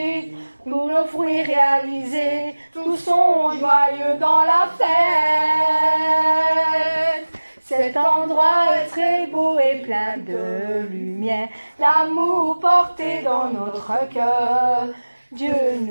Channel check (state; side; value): inverted; both; correlation -1.00